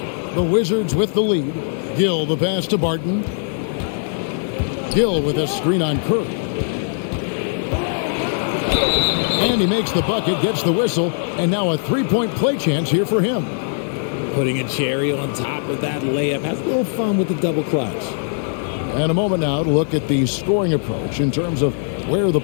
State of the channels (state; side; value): silent; right; digital silence